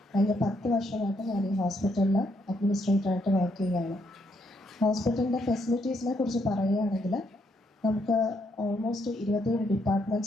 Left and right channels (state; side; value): normal; both; correlation 0.75